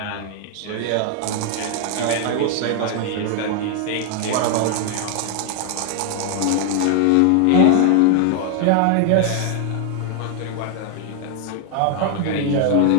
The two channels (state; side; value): different; both; correlation 0.01